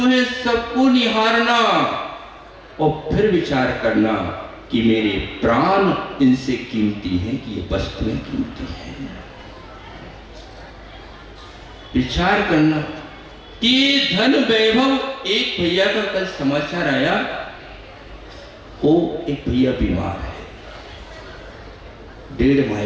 सबको निहारना, और फिर विचार करना कि मेरे प्राण इनसे कीमती हैं कि ये वस्तुएं कीमती हैं। विचार करना कि धन वैभव। एक भैया का कल समाचार आया, वो एक भैया बीमार है, 1.5 माह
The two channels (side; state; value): both; identical; correlation 1.00